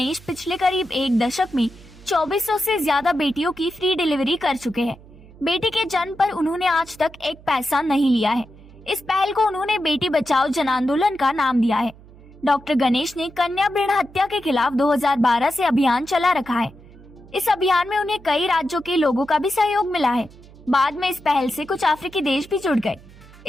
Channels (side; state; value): right; noise; hum, 22 dB below the sound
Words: पिछले करीब एक दशक में 2400 से ज्यादा बेटियों की फ्री डिलीवरी कर चुके हैं। बेटी के जन्म पर उन्होंने आज तक एक पैसा नहीं लिया है। इस पहल को उन्होंने बेटी बचाओ जन आंदोलन का नाम दिया है। डॉक्टर गणेश ने कन्या भ्रूण हत्या के खिलाफ 2012 से अभियान चला रखा है। इस अभियान में उन्हें कई राज्यों के लोगों का भी सहयोग मिला है। बाद में इस पहल से कुछ अफ्रीकी देश भी जुड़ गए।